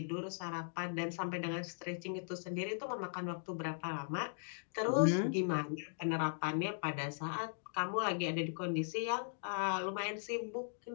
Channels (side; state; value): right; silent; digital silence